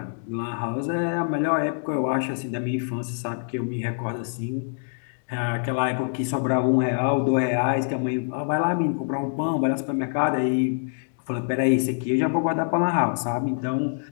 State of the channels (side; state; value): right; silent; digital silence